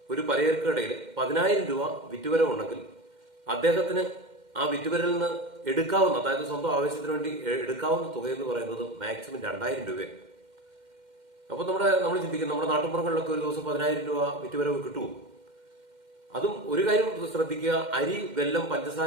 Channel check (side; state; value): left; late; 2.1 ms